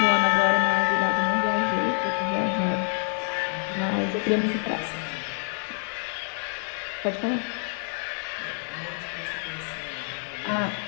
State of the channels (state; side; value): silent; right; 56 dB below the other